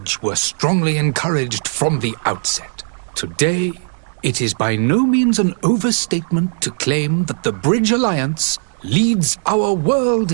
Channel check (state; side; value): silent; left; 67 dB below the other